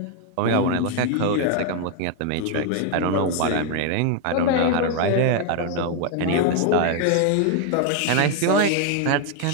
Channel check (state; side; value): different; both; correlation 0.01